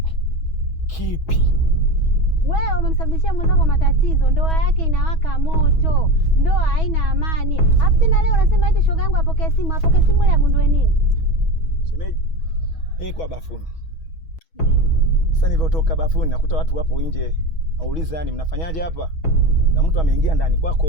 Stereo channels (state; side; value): late; right; 6.2 ms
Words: Kipi? Wewe umemsababishia mwenzako matatizo, ndoa yake inawaka moto, ndoa haina amani. Alafu tena leo unasema eti shoga yangu apokee simu ile agundue nini? Shemeji, kwa bafuni. Ndio. Sasa nilivyotoka bafuni nakuta watu wapo nje. Nauliza yani mnafanyaje hapa? Na mtu ameingia ndani